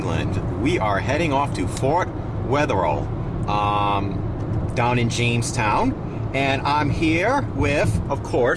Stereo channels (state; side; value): identical; both; correlation 1.00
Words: We are heading off to Fort Wetherill, down in Jamestown. And I'm here with, of